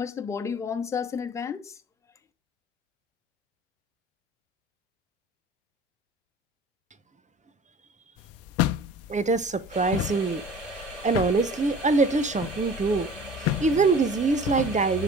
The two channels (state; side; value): normal; both; correlation 0.44